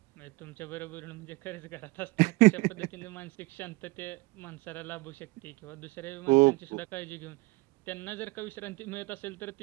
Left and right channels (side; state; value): left; quieter; 23.1 dB